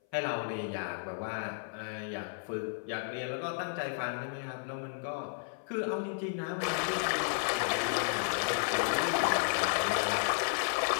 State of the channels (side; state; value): right; silent; 56 dB below the other